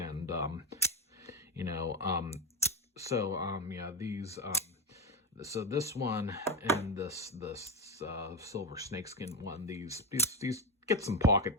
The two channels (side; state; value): both; normal; correlation 0.14